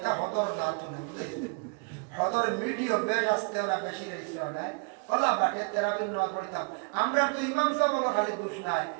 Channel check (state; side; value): quieter; left; 34.9 dB